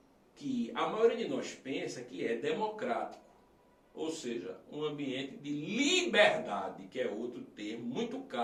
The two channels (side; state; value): both; identical; correlation 1.00